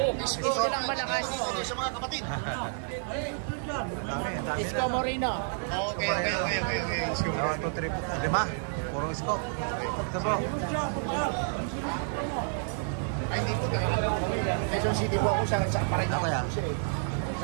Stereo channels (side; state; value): left; silent; 58 dB below the other